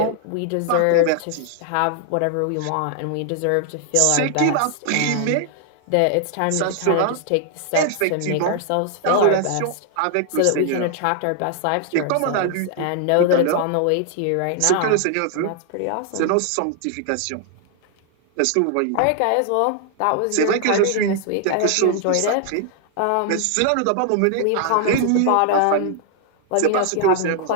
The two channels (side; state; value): both; different; correlation 0.00